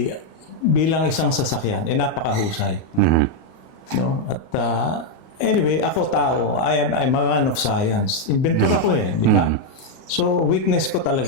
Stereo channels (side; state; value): right; late; 38 ms